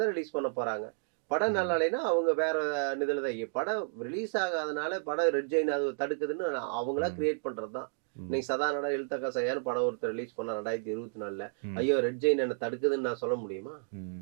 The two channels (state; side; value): silent; left; digital silence